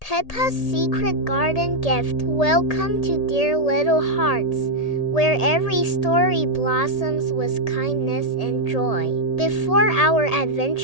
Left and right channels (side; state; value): right; late; 1.8 ms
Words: Peppa's Secret Garden Gift. Welcome to Dear Little Hearts, where every story blossoms with kindness and joy. Before our